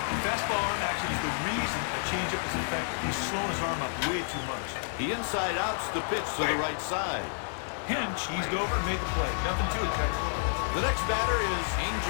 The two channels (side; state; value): right; silent; 58 dB below the other